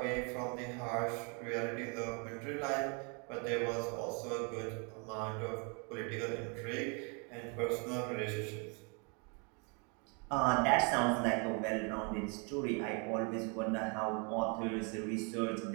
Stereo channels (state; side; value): quieter; left; 35.0 dB